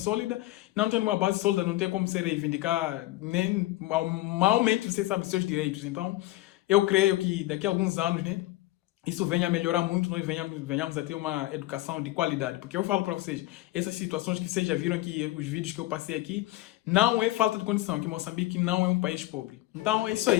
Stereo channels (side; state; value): right; quieter; 17.6 dB